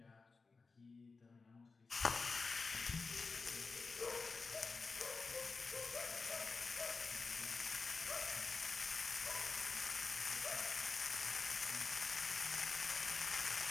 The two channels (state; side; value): quieter; right; 4.2 dB